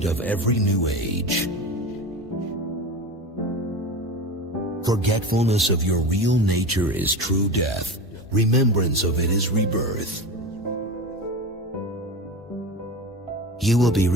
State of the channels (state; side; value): normal; both; correlation 0.27